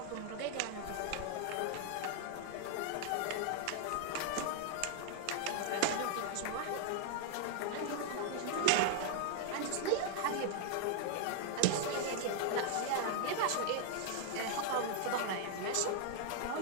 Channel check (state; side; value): different; both; correlation 0.00